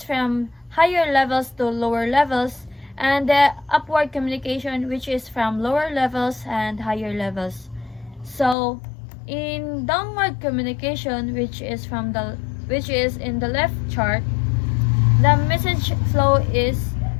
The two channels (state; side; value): drops out; right; at 8.6 s